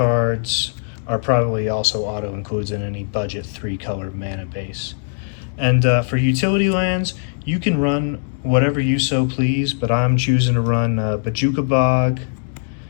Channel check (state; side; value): silent; right; digital silence